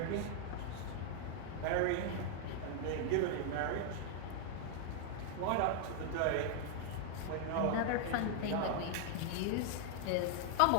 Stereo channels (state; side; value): different; both; correlation 0.00